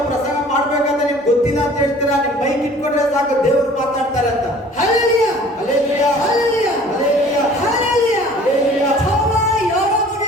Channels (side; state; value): both; normal; correlation 0.49